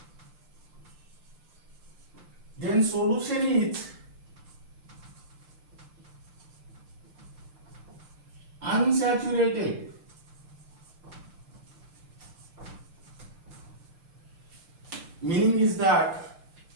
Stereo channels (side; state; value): left; late; 6.7 ms